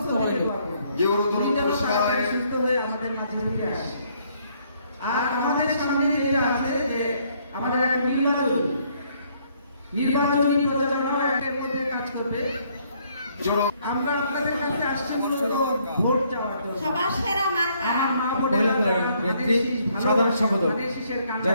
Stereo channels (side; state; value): both; inverted; correlation -0.68